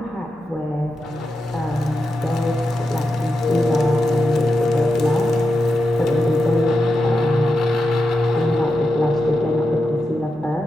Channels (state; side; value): normal; both; correlation 0.88